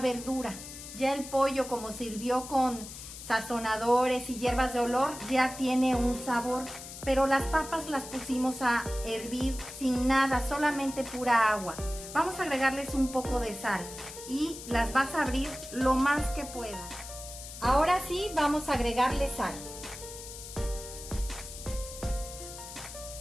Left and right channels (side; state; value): left; noise; hiss, 12 dB below the sound